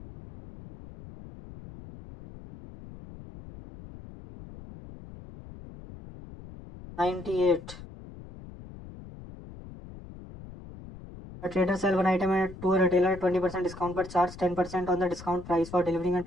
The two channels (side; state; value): left; noise; rumble, 16 dB below the sound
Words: 98। A trader sell one item to a retailer at 20% discount but charge 10% on the discount price for delivering and